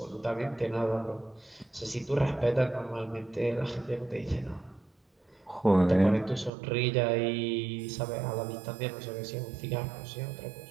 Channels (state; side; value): drops out; left; at 6.5 s